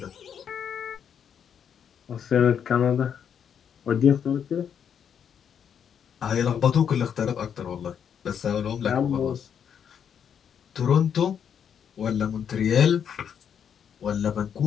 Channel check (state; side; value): quieter; right; 8.1 dB